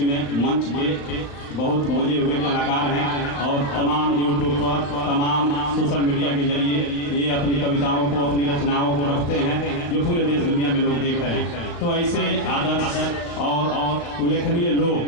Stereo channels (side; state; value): right; late; 35 ms